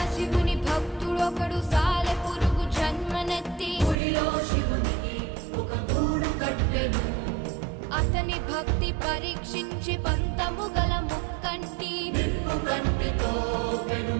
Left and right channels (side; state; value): left; drops out; at 4.0 s